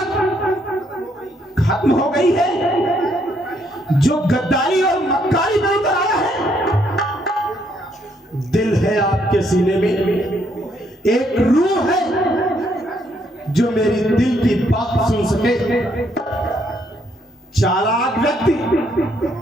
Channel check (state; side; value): normal; both; correlation 0.71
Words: खत्म हो गई है जो गद्दारी और मक्कारी में उतर आया है? दिल है आपके सीने में, एक रूह है जो मेरी दिल की बात सुन सके। चालाक व्यक्ति,